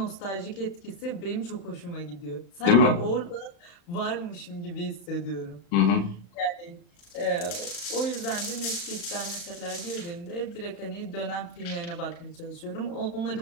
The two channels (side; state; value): right; late; 35 ms